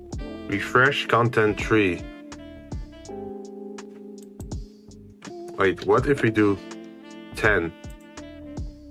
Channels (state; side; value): identical; both; correlation 1.00